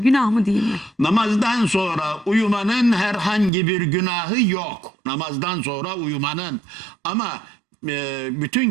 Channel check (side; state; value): left; drops out; at 3.5 s